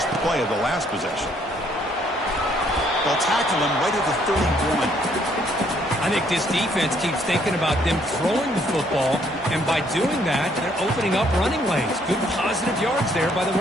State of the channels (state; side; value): normal; both; correlation 0.67